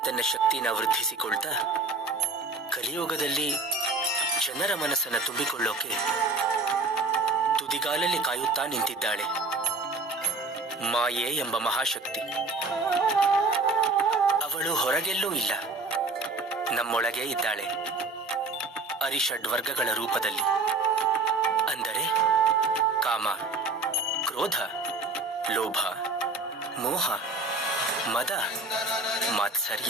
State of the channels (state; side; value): quieter; left; 3.5 dB